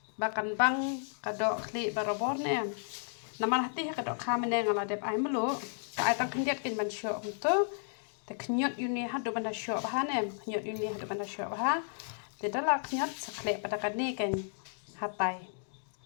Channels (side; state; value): right; silent; digital silence